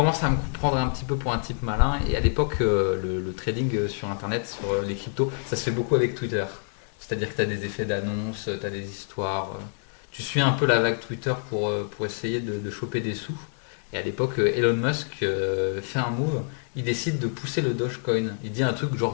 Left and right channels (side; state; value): right; silent; digital silence